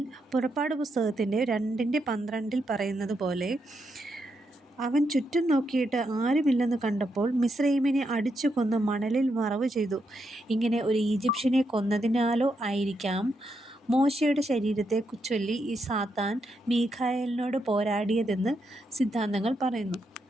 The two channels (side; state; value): both; normal; correlation 0.81